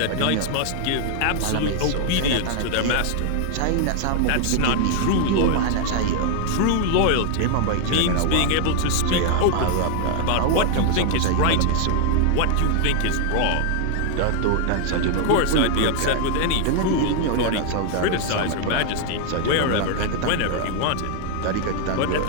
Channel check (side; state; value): both; different; correlation 0.00